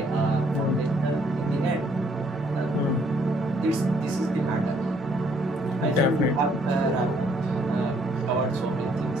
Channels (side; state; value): both; normal; correlation 0.66